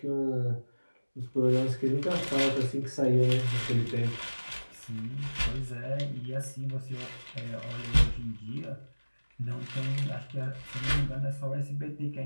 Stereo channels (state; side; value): inverted; both; correlation -1.00